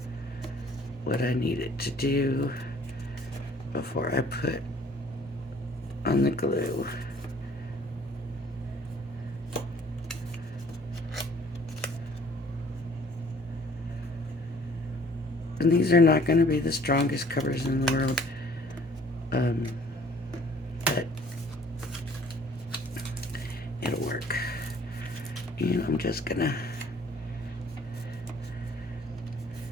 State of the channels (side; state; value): both; normal; correlation 0.56